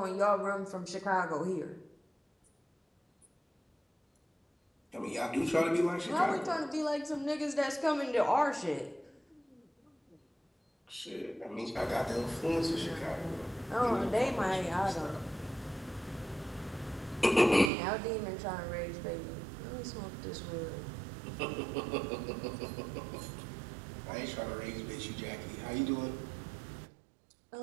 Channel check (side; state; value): left; drops out; at 17.7 s